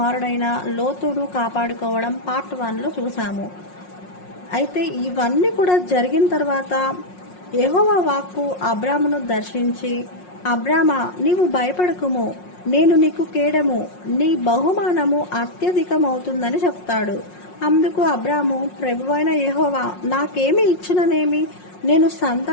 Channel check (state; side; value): late; right; 5.5 ms